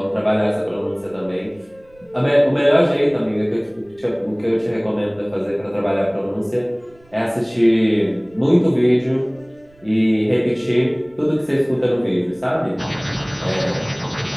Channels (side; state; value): right; noise; rumble, 29 dB below the sound